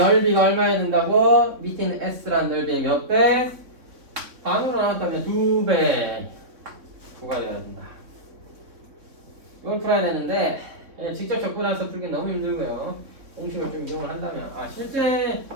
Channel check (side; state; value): left; late; 3.6 ms